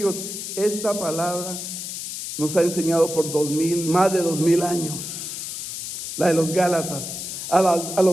esta palabra nos ha enseñado por más de 2000 años. La de los Gálatas. A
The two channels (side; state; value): left; noise; hiss, 6 dB below the sound